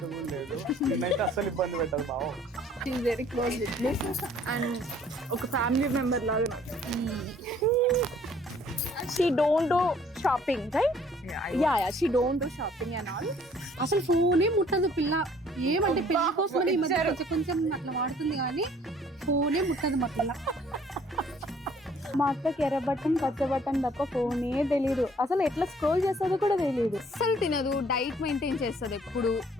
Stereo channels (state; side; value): normal; both; correlation 0.58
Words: కూడా లేదు. నేనైతే అస్సలు ఇబ్బంది పెట్టదు బావ. She is very close with me and ఒక ఫ్యామిలీ మెంబర్ లాగా. She don't do shopping, right? Yeah, she don't do shopping and all. అసలు ఫోనే ముట్టదు పిల్ల. ఏమంటే పెళ్లి కోసం ఈ మధ్య కొంచెం అట్లా వాడుతుంది కానీ ఫోనే ముట్టదు మా పిల్ల. మా అక్కకి ఎర్ర బటన్ పచ్చ బటన్ తప్ప ఫోనే తెలీదు. అసలు ఎట్లా స్క్రోల్ చేస్తుందో కూడా తెలియదు. అసలు తినదు, డైట్ మెయింటైన్ చేస్తుంది ఎప్పుడు.